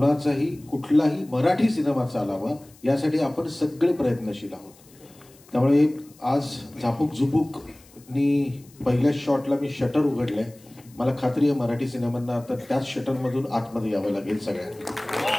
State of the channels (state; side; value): noise; left; hiss, 26 dB below the sound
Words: कुठलाही मराठी सिनेमा चालावा यासाठी आपण सगळे प्रयत्नशील आहोत. त्यामुळे आज झापूक झुपूकनी पहिल्या शॉटला मी शटर उघडलंय. मला खात्री आहे मराठी सिनेमांना आता त्याच शटरमधून आतमध्ये यावं लागेल सगळ्यांना.